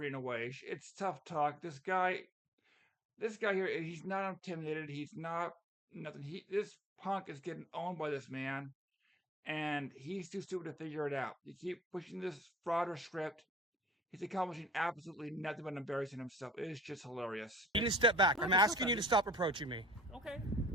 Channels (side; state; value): both; normal; correlation 0.55